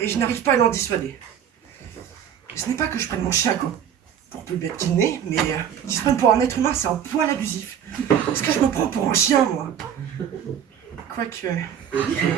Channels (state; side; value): quieter; left; 8.9 dB